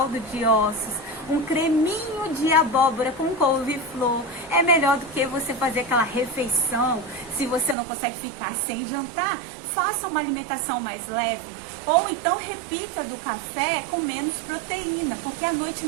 de ossos, um creminho de abóbora com couve-flor, é melhor do que você fazer aquela refeição. Se você não consegue ficar sem jantar, faça uma alimentação mais leve, ou então repita do café com menos proteína, porque à noite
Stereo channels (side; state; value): left; drops out; at 7.8 s